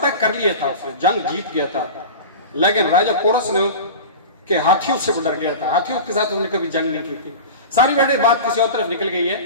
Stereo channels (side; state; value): both; inverted; correlation -0.31